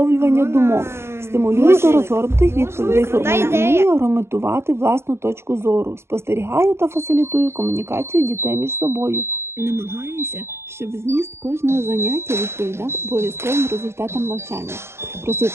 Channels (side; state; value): left; late; 0.12 ms